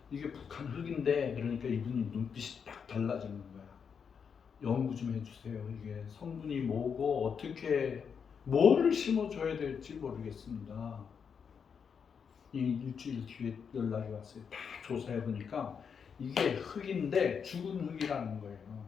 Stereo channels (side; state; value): right; quieter; 6.6 dB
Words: 이게 북한 흙인데, 그러니까 이분이 눈빛이 딱 달라지는 거야. 연구 좀 해주세요. 이게 성분이 뭐고 어떻게 뭐를 심어줘야 될지 모르겠습니다. 이 일주일 뒤에 연락이 왔어요. 다 조사해 보니까 이게 흙인데 죽은 흙이라는 거예요.